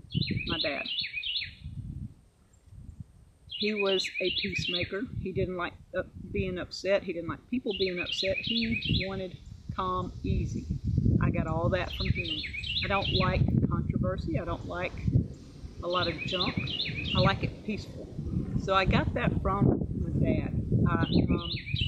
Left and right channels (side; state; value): both; identical; correlation 1.00